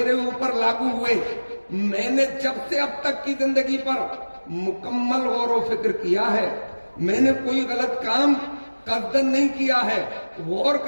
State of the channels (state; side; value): inverted; both; correlation -1.00